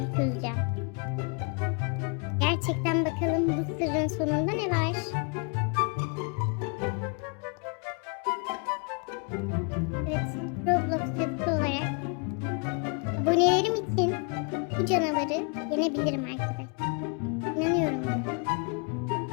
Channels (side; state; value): right; quieter; 36.7 dB